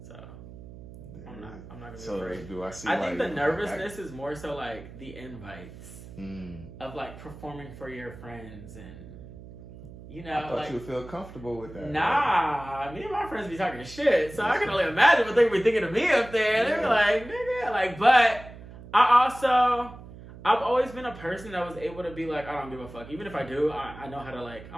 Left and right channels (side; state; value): right; noise; hum, 16 dB below the sound